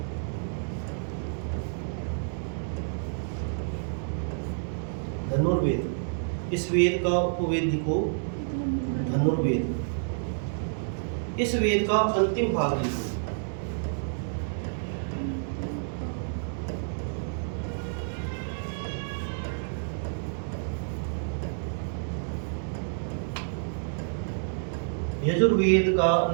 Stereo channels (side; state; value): left; silent; digital silence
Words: धनुर्वेद। इस वेद का उपवेद लिखो धनुर्वेद। इस वेद का अंतिम भाग लिखो। यजुर्वेद का